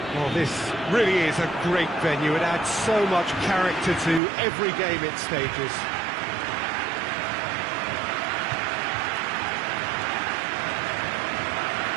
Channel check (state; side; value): drops out; left; at 4.2 s